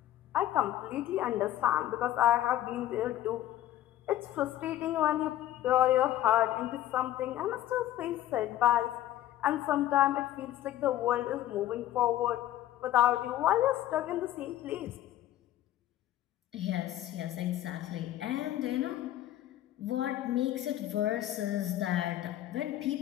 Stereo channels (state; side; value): quieter; right; 13.5 dB